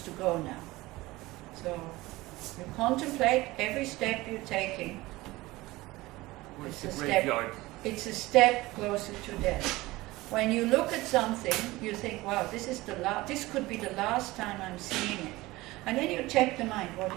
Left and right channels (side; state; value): left; quieter; 19.7 dB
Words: go now. So, you contemplate every step you're taking. Where's the graveyard? It's a step closer to death. When you look at something, you think, wow, this could be the last time I'm seeing it. And then you check the mind, what